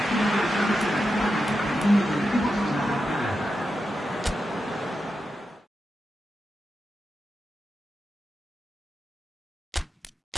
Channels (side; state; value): both; normal; correlation 0.89